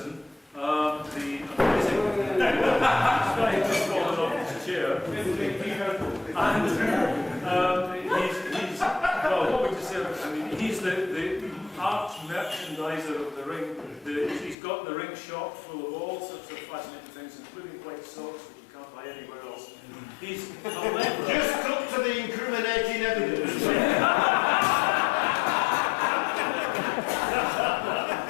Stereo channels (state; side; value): drops out; right; at 14.6 s